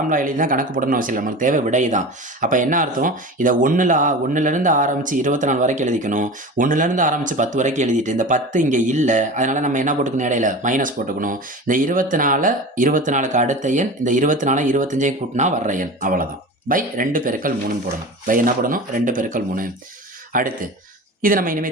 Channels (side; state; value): both; normal; correlation 0.32